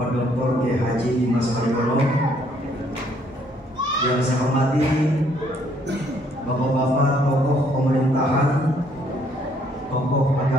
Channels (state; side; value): normal; both; correlation 0.66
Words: Dr. Kiai Haji Dimas Mariono, yang saya hormati bapak-bapak tokoh pemerintahan, tokoh